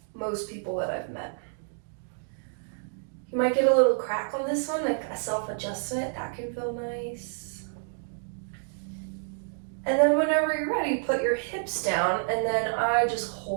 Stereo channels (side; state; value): left; silent; digital silence